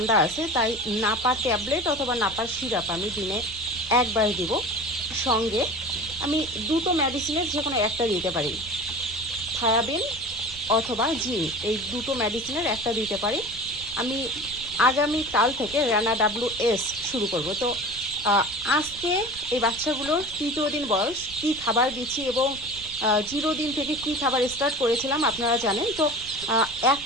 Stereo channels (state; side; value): noise; right; rumble, 19 dB below the sound